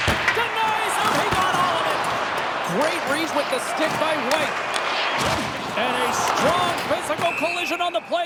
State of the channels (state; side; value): identical; both; correlation 1.00